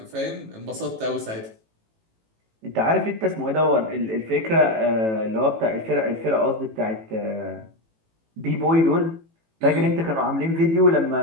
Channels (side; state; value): left; late; 18 ms